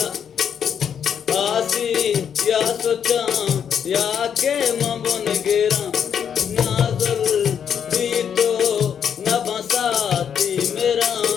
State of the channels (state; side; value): quieter; right; 8.0 dB